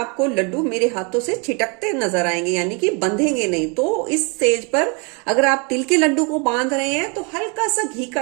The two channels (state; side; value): quieter; left; 33.2 dB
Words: लड्डू मेरे हाथों से छिटकते नजर आएंगे, यानी कि बंधेंगे नहीं। तो इस स्टेज पर अगर आप तिल के लड्डू को बांध रहे हैं तो हल्का सा घी का